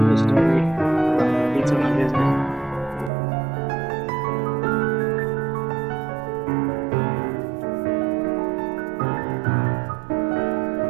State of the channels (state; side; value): drops out; left; at 3.1 s